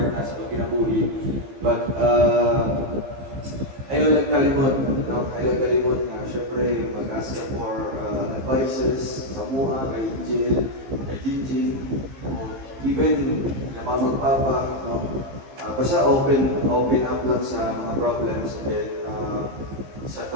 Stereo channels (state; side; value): late; left; 15 ms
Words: na sa kinabuhi. But ayaw lang kalimot, no? Ayaw lang kalimot na syempre mag-ask ka for advices sa MUA, kay Angel, kay Jinjin, o even na mamagpapa, no? Basta open up lang sa mga problems and then sa